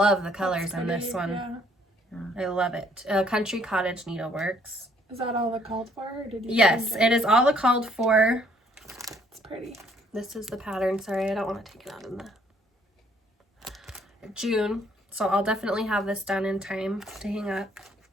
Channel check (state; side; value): normal; both; correlation 0.64